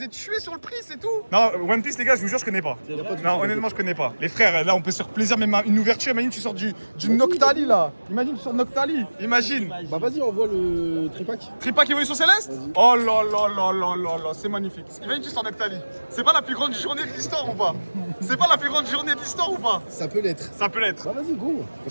ai tués sur le prix, c'est tout. Non, One Piece, les gars, je vous jure, je connais pas. Non, honnêtement, je connais pas. Les frères, là, on peut se faire plaisir, même une ouverture. Imagine, tu sors du Noctali, là. Imagine, tu sors de Noctali. Imagine. Bah vas-y, envoie le tripack. Tripack Évolution Céleste? Oh là là là là là là, c'est magnifique. Imagine, tu sors de Noctali. C'est pas la plus grande journée de l'histoire ou pas? C'est pas la plus grande journée de l'histoire ou pas? Ça peut l'être. Ça peut l'être. Bah vas-y, go.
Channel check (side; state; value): both; inverted; correlation -1.00